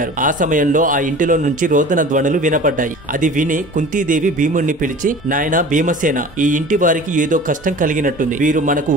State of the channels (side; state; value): both; normal; correlation 0.40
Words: ఆ సమయంలో ఆ ఇంటిలో నుంచి రోదన ధ్వనులు వినపడ్డాయి. అది విని కుంతీదేవి భీముడిని పిలిచి, నాయనా భీమసేన, ఈ ఇంటి వారికి ఏదో కష్టం కలిగినట్టుంది. వీరు మనకు